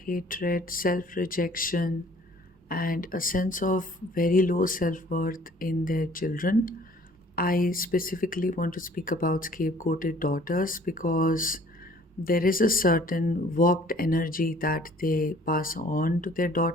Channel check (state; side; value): normal; both; correlation 0.54